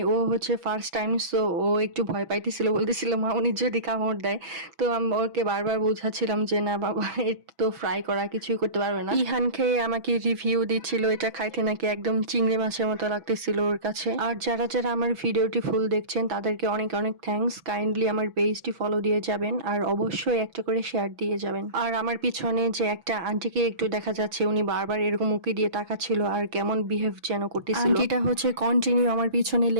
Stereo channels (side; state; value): left; late; 6.1 ms